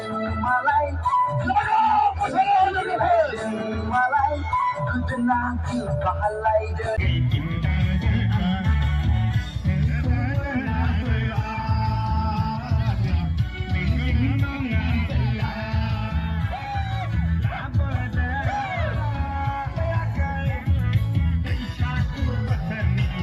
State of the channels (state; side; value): identical; both; correlation 1.00